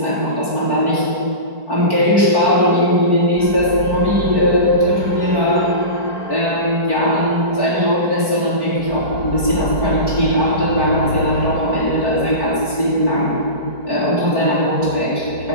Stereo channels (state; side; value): late; right; 4.5 ms